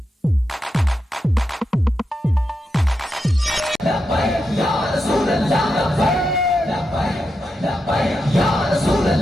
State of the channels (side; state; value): both; normal; correlation 0.87